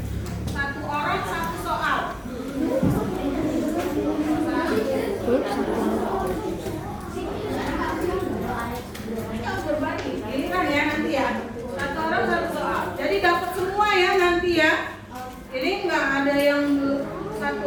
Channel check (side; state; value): both; identical; correlation 1.00